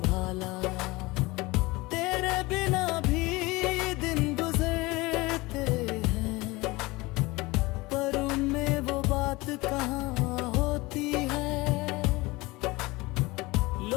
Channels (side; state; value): right; quieter; 22.3 dB